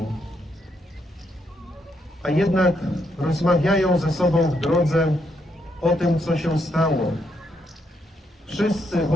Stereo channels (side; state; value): both; normal; correlation 0.76